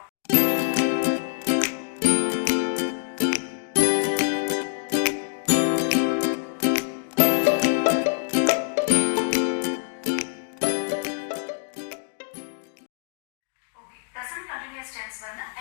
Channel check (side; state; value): right; silent; digital silence